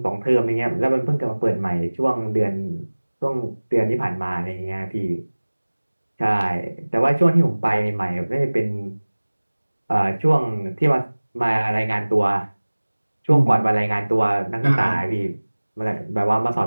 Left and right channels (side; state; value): both; inverted; correlation -1.00